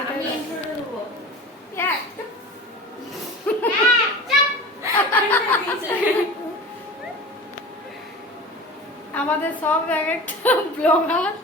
আমাদের সব এক একটা ব্লগার।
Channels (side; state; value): both; normal; correlation 0.36